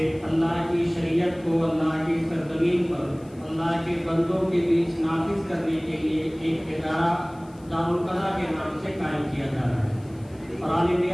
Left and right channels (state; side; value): noise; left; hiss, 29 dB below the sound